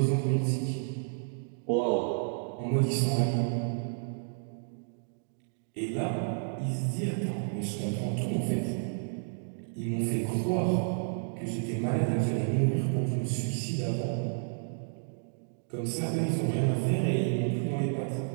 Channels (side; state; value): left; silent; digital silence